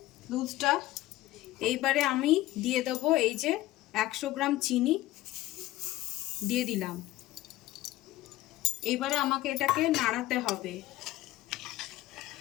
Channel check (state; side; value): quieter; right; 16.3 dB